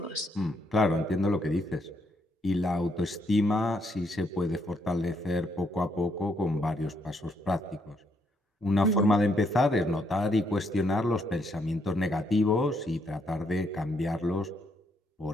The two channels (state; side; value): normal; both; correlation 0.74